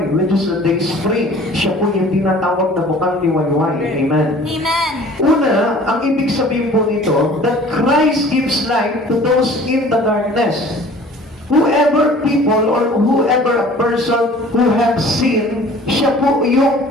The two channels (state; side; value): normal; both; correlation 0.48